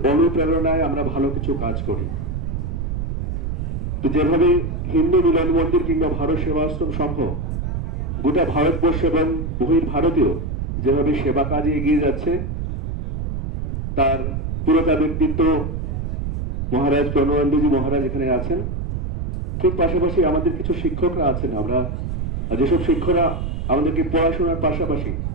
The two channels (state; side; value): noise; right; rumble, 3 dB below the sound